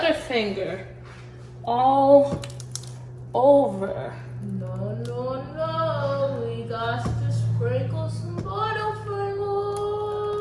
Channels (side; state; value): both; identical; correlation 1.00